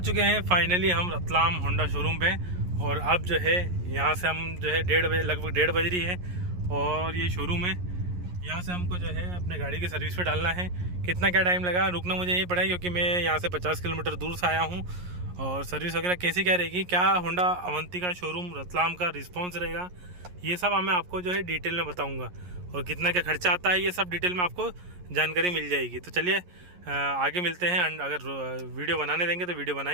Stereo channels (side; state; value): left; late; 11 ms